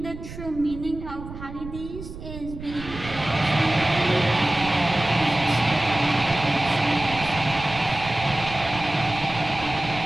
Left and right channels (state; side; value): noise; right; rumble, 12 dB below the sound